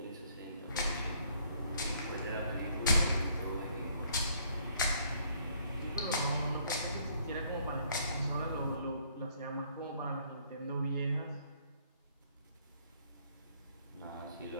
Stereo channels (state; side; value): inverted; both; correlation -0.64